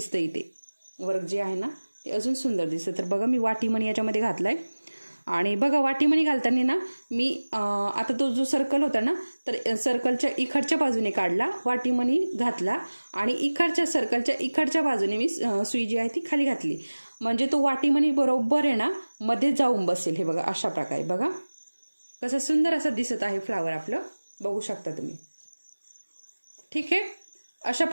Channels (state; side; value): inverted; both; correlation -1.00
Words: इथे वर्क जे आहे ना ते अजून सुंदर दिसतं. तर बघा मी वाटीमणी याच्यामध्ये घातलाय. आणि बघा वाटीमणी घालताना ना मी आता तो जो सर्कल होता ना तर सर्कलच्या इकडच्या बाजूने काढला, वाटीमणी घातला आणि इकडच्या सर्कलच्या इकडच्या बाजूने मी सुई जी आहे ती खाली घातली, म्हणजे तो वाटीमणी बरोबर आहे ना मध्ये जाऊन बसेल. हे बघा अशा प्रकारे बघा कसं सुंदर असं दिसत आहे फ्लावर आपलं, बघू शकता तुम्ही. ठीक आहे, अशा